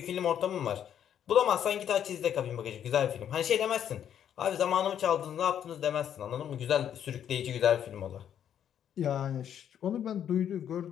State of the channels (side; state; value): right; quieter; 9.5 dB